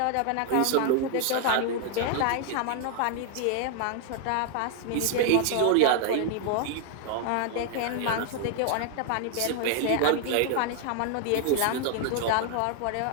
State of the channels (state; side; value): different; both; correlation 0.00